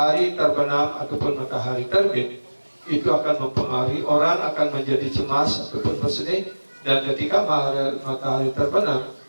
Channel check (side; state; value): both; inverted; correlation -1.00